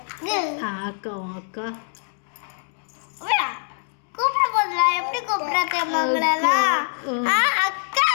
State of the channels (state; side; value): silent; right; 63 dB below the other